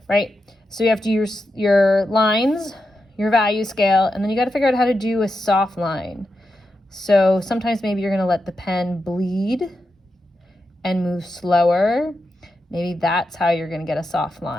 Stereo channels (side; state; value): both; normal; correlation 0.87